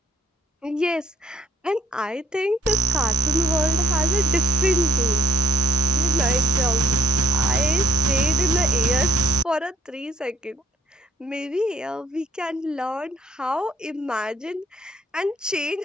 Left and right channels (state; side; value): normal; both; correlation 0.64